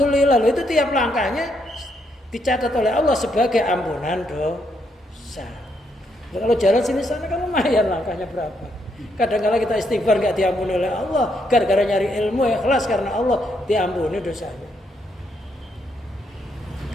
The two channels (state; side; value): normal; both; correlation 0.76